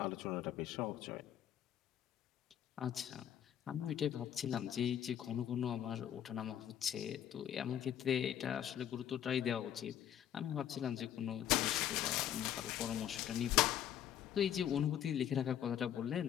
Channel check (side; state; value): right; quieter; 10.3 dB